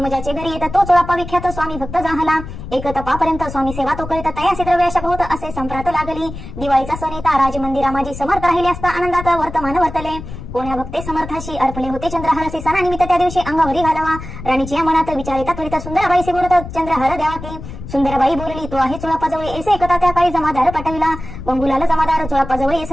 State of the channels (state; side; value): noise; left; rumble, 11 dB below the sound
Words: ज्याचे घरी येत तो चोळापा विख्यात स्वामी भक्त जाहला. एक तपापर्यंत स्वामी सेवा तो करीत तयासी द्रव्याशक होत असे संप्रात लागली. दिवाळीचा सण येता राजमंदिरा माझी समर्थ राहिले असता आनंदात वर्तमान वर्तले. कोण्या भक्ते समर्थाशी अर्पले होते चंद्रहारासी सणानिमित्त त्या दिवशी अंगावरी घालावा. राणीची या मनात विचारिता त्वरित सुंदराबाईशी बोलत चंद्रहार द्यावा की. सुंदराबाई बोलली तो आहे चोळापाजवळ ऐसे एकता त्या काळी जमादार पाठविला. गंगुलाल जमादार चोळापाजवळ